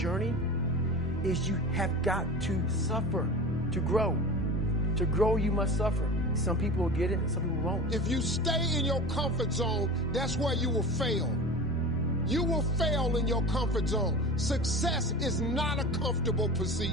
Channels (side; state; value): both; normal; correlation 0.33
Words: is you have got to suffer to grow. To grow, you must suffer. Some people will get it and some people won't. If you stay in your comfort zone, that's where you will fail. You will fail in your comfort zone. Success is not a comfortable